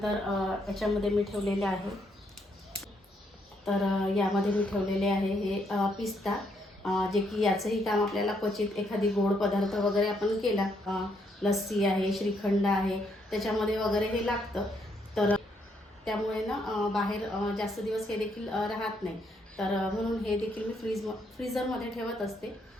याच्यामध्ये मी ठेवलेले आहे, तर यामध्ये मी ठेवलेले आहे हे पिस्ता, जे की याचंही काम आपल्याला क्वचित एखादी गोड पदार्थ वगैरे आपण केला, लस्सी आहे, श्रीखंड आहे, त्याच्यामध्ये वगैरे हे लागतं। तर त्यामुळे ना बाहेर जास्त दिवस हे देखील राहत नाही, तर म्हणून हे देखील मी फ्रीझरमध्ये ठेवत असते,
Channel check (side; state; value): both; normal; correlation 0.74